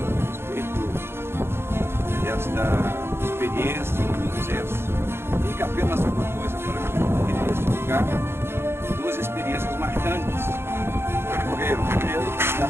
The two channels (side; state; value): left; late; 0.12 ms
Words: respeito desta experiência do sucesso. Fica apenas uma coisa para mim, que neste lugar, duas experiências marcantes ocorreram. Primeiro, da